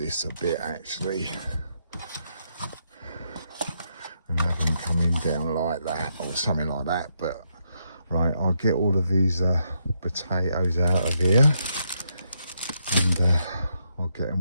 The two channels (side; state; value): both; inverted; correlation -0.79